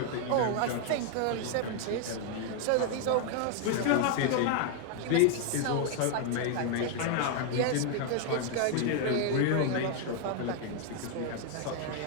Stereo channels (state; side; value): different; both; correlation 0.00